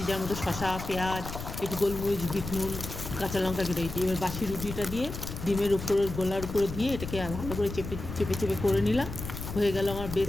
যার মধ্যে শসা, পেঁয়াজ, একটু গোলমরিচ, বিট নুন, কাঁচা লঙ্কা কেটে রেখেছি। এবার বাসি রুটিটা দিয়ে ডিমের উপরে, গোলার উপরে দিয়ে এটাকে ভালো করে চেপে চেপে চেপে করে নিলাম। হয়ে গেল, আমার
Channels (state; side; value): noise; left; rumble, 8 dB below the sound